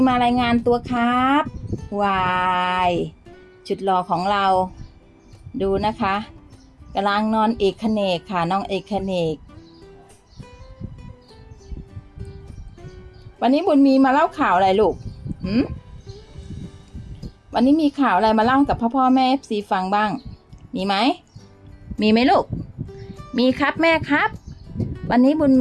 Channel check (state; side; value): identical; both; correlation 1.00